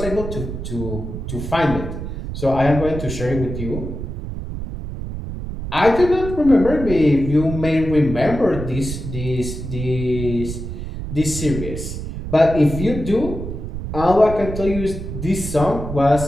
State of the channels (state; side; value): noise; right; rumble, 7 dB below the sound